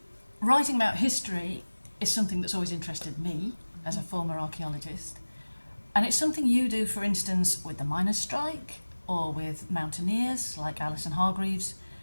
Writing about history is something that's always interested me as a former archaeologist. And it's something you do, for instance, with the miners' strike or with mountaineers like Alison Hargreaves.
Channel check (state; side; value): inverted; both; correlation -1.00